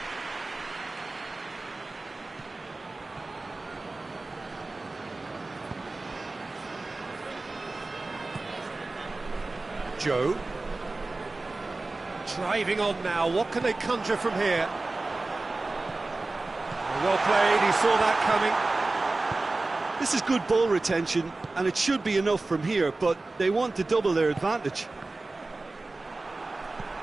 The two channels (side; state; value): left; quieter; 3.2 dB